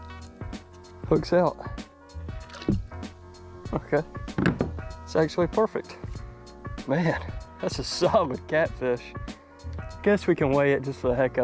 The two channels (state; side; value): identical; both; correlation 1.00